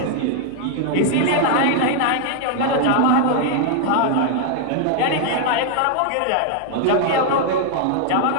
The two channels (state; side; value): different; both; correlation 0.00